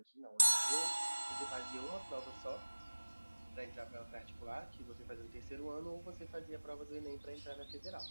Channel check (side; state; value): both; inverted; correlation -1.00